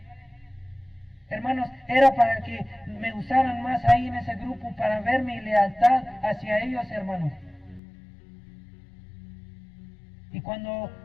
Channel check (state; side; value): drops out; right; at 7.8 s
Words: Hermanos, era para que me usaran más ahí en ese grupo, para ver mi lealtad hacia ellos, hermanos. Y cuando